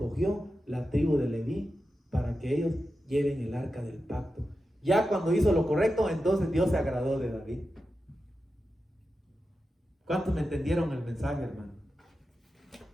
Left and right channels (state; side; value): normal; both; correlation 0.91